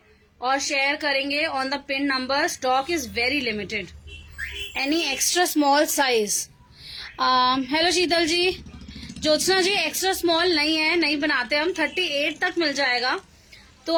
और शेयर करेंगे on the pin number. Stock is very limited. Any extra small size? Hello Sheetal ji. Jyotsna ji extra small नहीं है, नहीं बनाते हम। 38 तक मिल जाएगा। तो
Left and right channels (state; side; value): identical; both; correlation 1.00